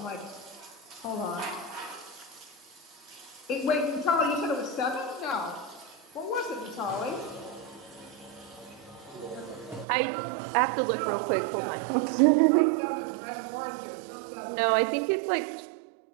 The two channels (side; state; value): left; drops out; at 9.9 s